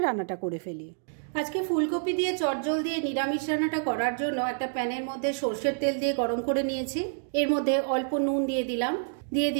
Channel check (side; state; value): left; silent; digital silence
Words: রান্নাটা করে ফেলি। আজকে ফুলকপি দিয়ে চটজলদি নিরামিষ রান্নাটা করার জন্য একটা প্যানের মধ্যে সর্ষের তেল দিয়ে গরম করে নিয়েছি। এর মধ্যে অল্প নুন দিয়ে দিলাম, দিয়ে